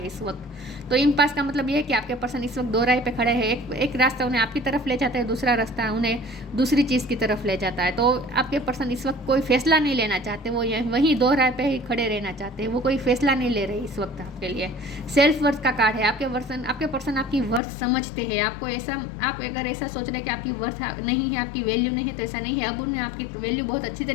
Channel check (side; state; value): right; drops out; at 17.6 s